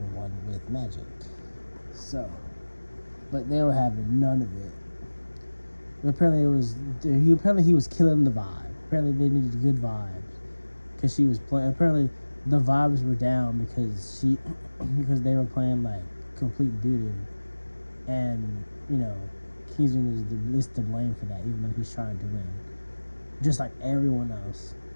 one with Magic. So, but they were having none of it. But apparently he was killing the vibe. Apparently they needed good vibes because she was playing. Apparently the vibes were down because they were playing like complete doo-doo, and Kingsman is the least to blame for that, even though he's trying to win, just like everyone else.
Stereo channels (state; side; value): inverted; both; correlation -1.00